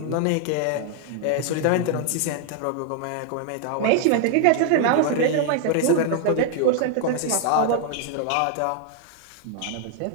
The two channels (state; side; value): different; both; correlation 0.00